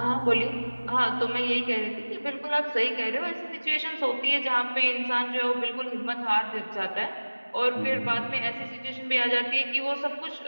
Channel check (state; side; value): inverted; both; correlation -1.00